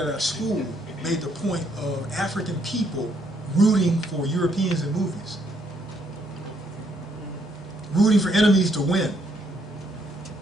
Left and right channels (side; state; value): both; normal; correlation 0.71